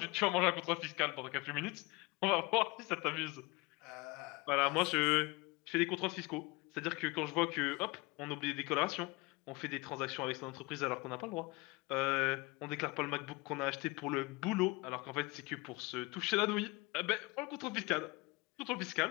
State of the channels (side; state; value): right; quieter; 24.4 dB